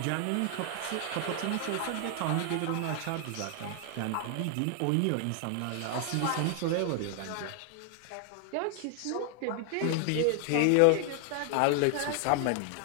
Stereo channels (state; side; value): different; both; correlation 0.00